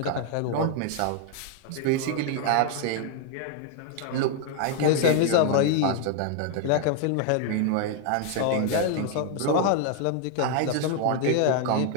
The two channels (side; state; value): both; different; correlation 0.00